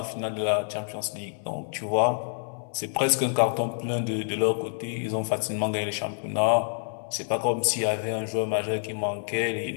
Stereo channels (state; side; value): silent; right; 60 dB below the other